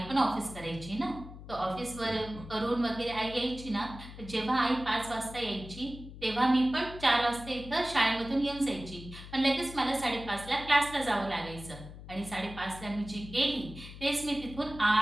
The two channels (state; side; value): noise; left; hum, 14 dB below the sound